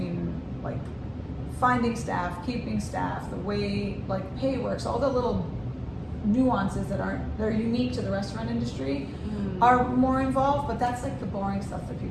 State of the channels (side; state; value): both; identical; correlation 1.00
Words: like finding staff, keeping staff, the way like pay works, all the little nuances they're unique to the restaurant industry are more involved, but that's like the boring stuff that